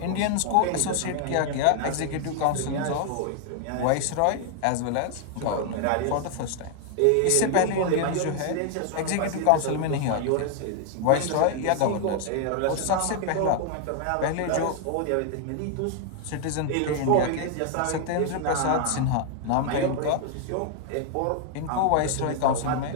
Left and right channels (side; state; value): both; different; correlation 0.00